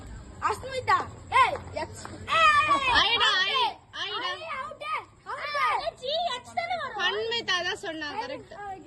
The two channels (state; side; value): identical; both; correlation 1.00